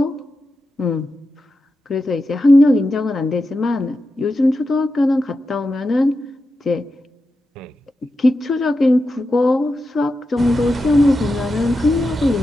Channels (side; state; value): both; normal; correlation 0.89